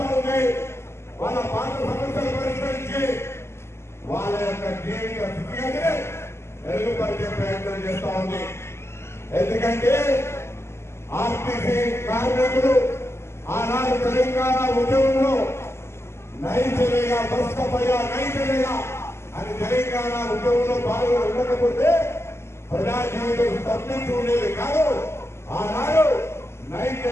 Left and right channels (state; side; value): late; right; 0.12 ms